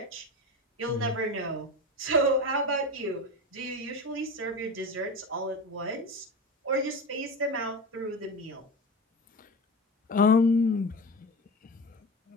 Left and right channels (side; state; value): both; normal; correlation 0.26